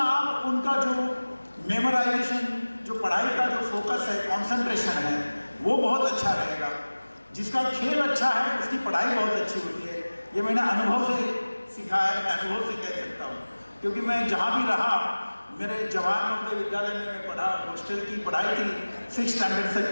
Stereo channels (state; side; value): inverted; both; correlation -1.00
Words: आप उनका जो मेमोराइजेशन, जो पढ़ाई का जो फोकस है, कंसंट्रेशन है, वो बहुत अच्छा रहेगा। जिसका खेल अच्छा है उसकी पढ़ाई बहुत अच्छी होती है। ये मैंने अनुभव से सीखा है, मैं अनुभव से कह सकता हूँ, क्योंकि मैं जहाँ भी रहा, मेरे जवाहर नवोदय विद्यालय में मैं पढ़ा, हॉस्टल की पढ़ाई थी 6th स्टैंडर्ड से